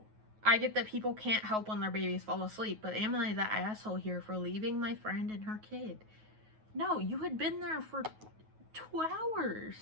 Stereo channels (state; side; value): late; left; 9.3 ms